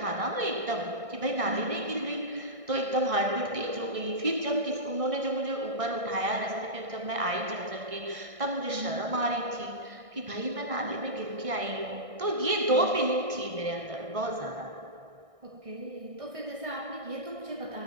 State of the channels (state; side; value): late; left; 1.6 ms